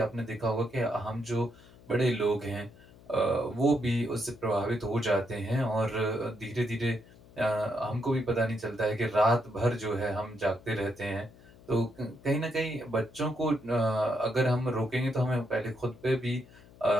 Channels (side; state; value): left; noise; hum, 23 dB below the sound